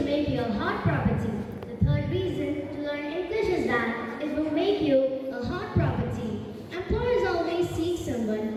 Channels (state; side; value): identical; both; correlation 1.00